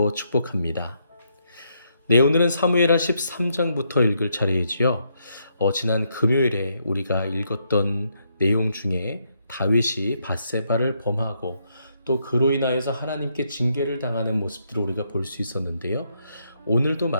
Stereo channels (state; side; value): inverted; both; correlation -0.77